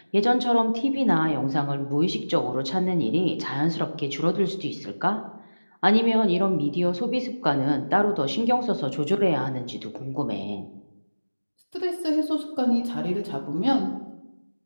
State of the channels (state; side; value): inverted; both; correlation -1.00